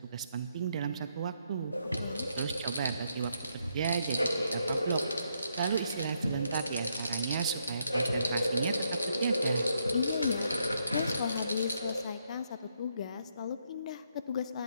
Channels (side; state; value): both; inverted; correlation -0.76